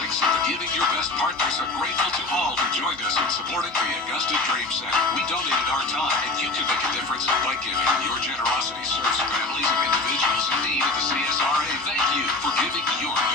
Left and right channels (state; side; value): quieter; right; 3.2 dB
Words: giving your best partners are grateful to all who joined us in supporting the Augusta Dream Center. We donated our time, and you can make a difference by giving. Your generosity serves families and individuals in need of the CSRA. Thank you for giving your